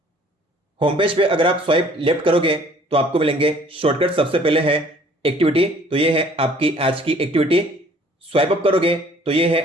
होम पेज पे अगर आप स्वाइप लेफ्ट करोगे तो आपको मिलेंगे शॉर्टकट। सबसे पहले है एक्टिविटी, तो ये है आपकी आज की एक्टिविटी। स्वाइप अप करोगे तो ये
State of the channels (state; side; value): normal; both; correlation 0.56